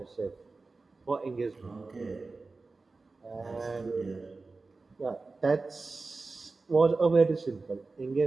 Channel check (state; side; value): quieter; left; 3.8 dB